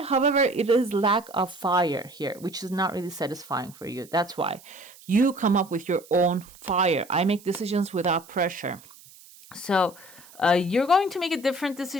However, it is lack of fire here, which is not really satisfying for you. That's why you come up with your own fire. I make decisions without pressure. So you're going to make a different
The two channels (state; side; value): noise; right; hiss, 23 dB below the sound